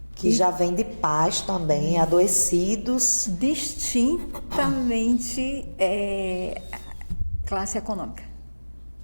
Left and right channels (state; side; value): inverted; both; correlation -1.00